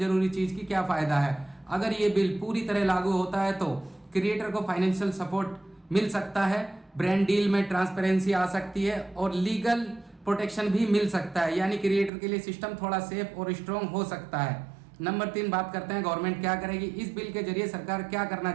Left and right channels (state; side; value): drops out; left; at 12.1 s